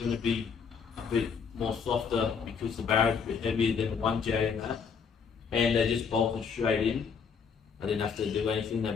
to be a bit more softer because the Barra is a bit heavier than the 1J and that. And they just bolted straight in. I didn't have to do anything, they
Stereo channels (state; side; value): quieter; right; 6.2 dB